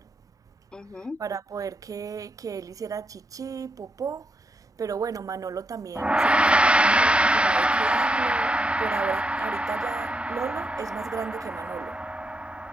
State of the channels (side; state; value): both; normal; correlation 0.82